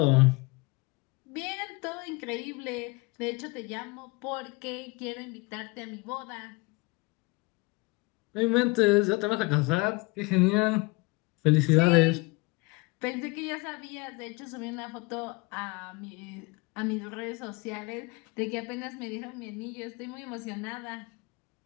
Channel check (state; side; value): quieter; right; 26.2 dB